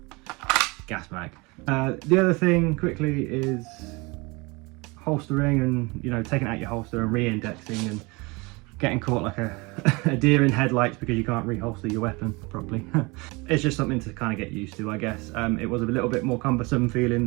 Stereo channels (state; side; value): quieter; left; 26.2 dB